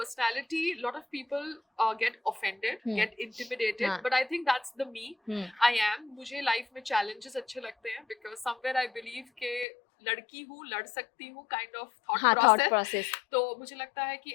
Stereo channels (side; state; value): right; drops out; at 9.7 s